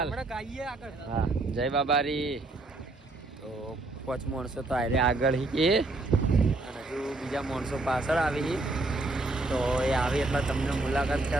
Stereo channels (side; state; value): left; quieter; 3.0 dB